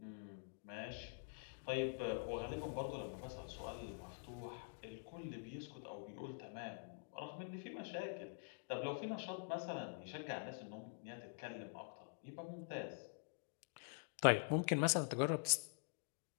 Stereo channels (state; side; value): silent; right; digital silence